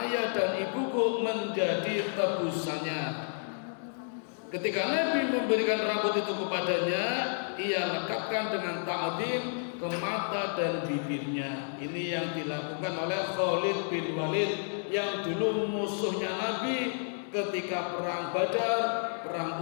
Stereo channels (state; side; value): silent; right; digital silence